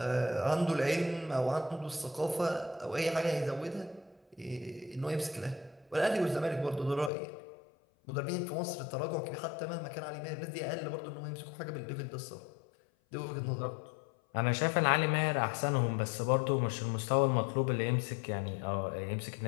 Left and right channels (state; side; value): drops out; right; at 7.1 s